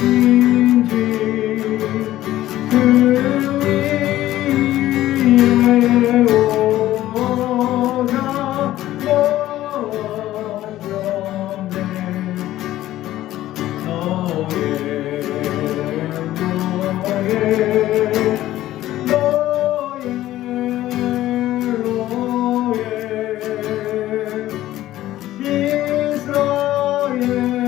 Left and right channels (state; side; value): quieter; right; 14.5 dB